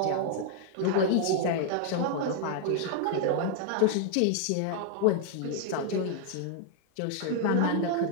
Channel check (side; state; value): both; different; correlation 0.00